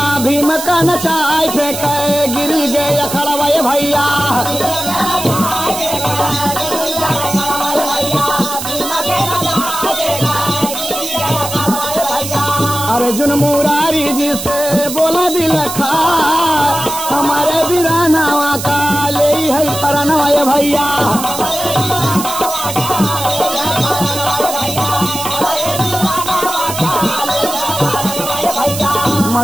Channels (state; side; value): noise; right; hiss, 7 dB below the sound